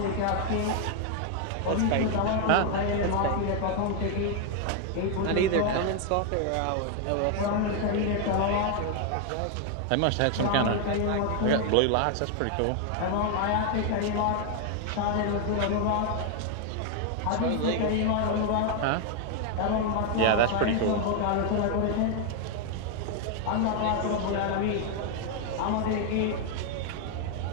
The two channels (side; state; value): both; different; correlation 0.00